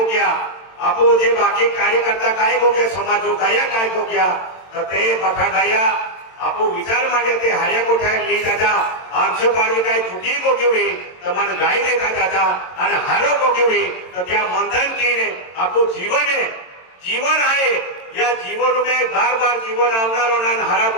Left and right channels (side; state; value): right; late; 22 ms